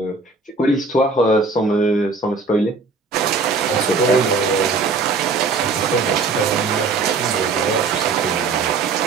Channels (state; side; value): quieter; left; 4.2 dB